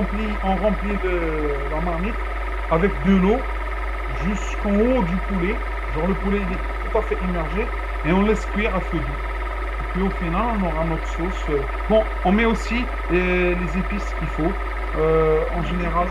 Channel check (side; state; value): both; identical; correlation 1.00